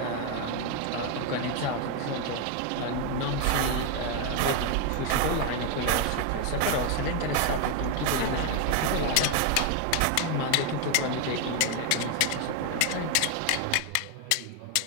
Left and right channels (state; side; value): different; both; correlation 0.01